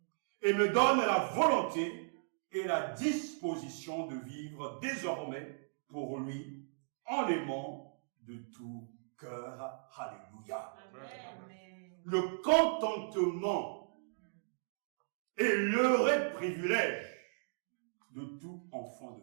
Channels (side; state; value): left; silent; digital silence